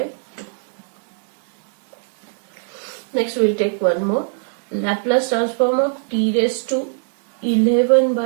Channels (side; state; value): left; silent; digital silence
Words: 2. Next we will take one more, Laplace transform of t raised to 11